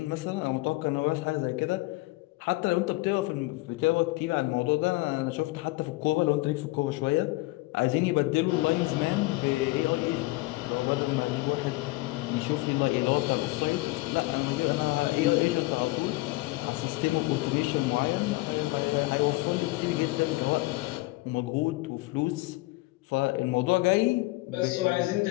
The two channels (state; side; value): quieter; right; 21.4 dB